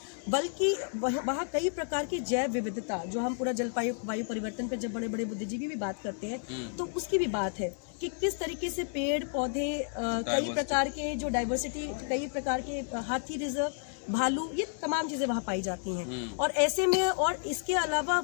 बल्कि वहाँ कई प्रकार की जैव विविधता, जो हम पूरा जलवायु परिवर्तन पर जब बड़े बड़े बुद्धिजीवी भी बात करते हैं तो उसकी भी बात है कि किस तरीके से पेड़ पौधे, कई प्रकार के जो डाइवर्सिटी, कई प्रकार के हाथी रिजर्व, भालू, ये तमाम चीजें वहाँ पाई जाती हैं। और ऐसे में, और इसके अलावा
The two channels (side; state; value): right; silent; 57 dB below the other